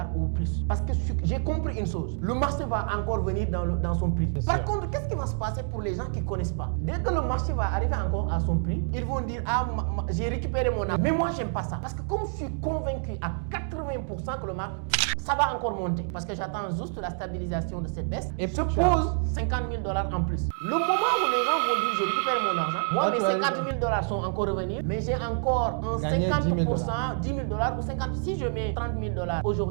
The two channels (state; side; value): silent; left; 60 dB below the other